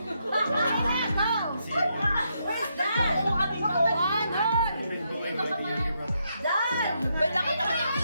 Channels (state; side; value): inverted; both; correlation -0.79